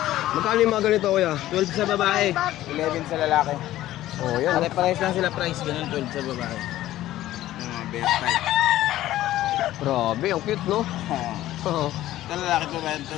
Magkano yung mga ganito kuya? 12 sa babae, 11 sa lalaki. Oh, yan. Pare-pares lang sila price, ganun 12 sa babae. Yung mga best type. Grabe, ang cute no? Oo. Oo. Ito lalaki po ba? Ito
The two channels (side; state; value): right; quieter; 14.5 dB